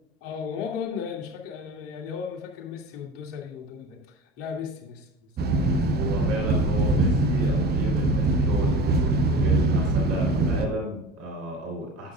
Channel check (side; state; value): both; normal; correlation 0.35